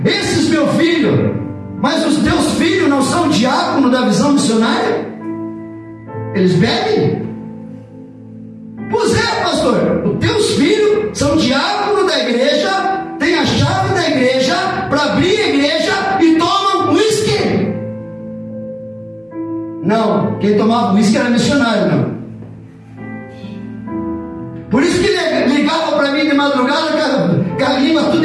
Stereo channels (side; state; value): both; identical; correlation 1.00